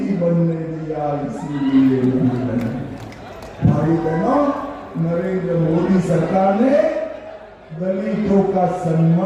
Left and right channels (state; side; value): identical; both; correlation 1.00